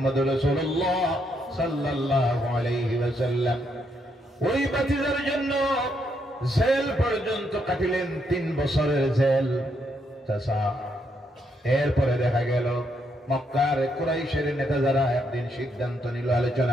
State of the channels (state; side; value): normal; both; correlation 0.76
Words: রাসূলুল্লাহ সাল্লাল্লাহু আলাইহি ওয়াসাল্লাম। ওই ভাতিজার জন্য জেল পর্যন্ত কাটিলেন, 3 বছরের জেল চাচা। এরপরে দেখা গেল মক্কার কুরাইশের নেতা যারা একদিন সিদ্ধান্ত নিল,